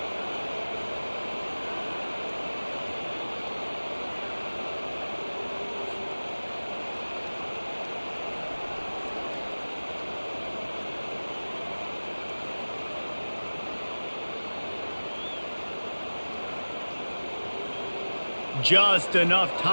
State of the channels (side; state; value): both; inverted; correlation -1.00